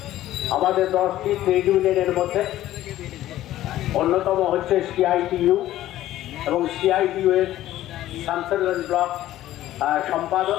আমাদের 10টি ট্রেড ইউনিয়নের মধ্যে অন্যতম হচ্ছে সিআইটিইউ এবং সিআইটিইউ এর শামসেরগঞ্জ ব্লক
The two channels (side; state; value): right; quieter; 14.0 dB